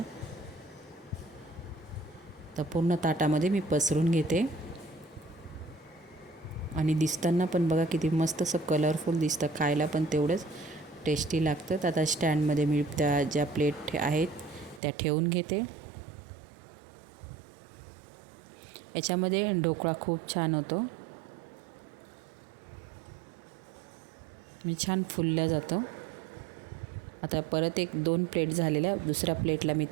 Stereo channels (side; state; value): left; drops out; at 14.8 s